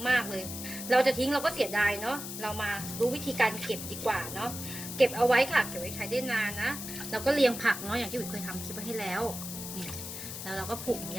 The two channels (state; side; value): noise; left; hiss, 8 dB below the sound